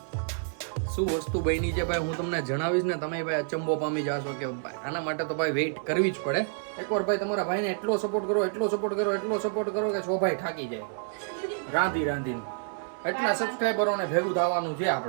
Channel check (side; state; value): left; silent; digital silence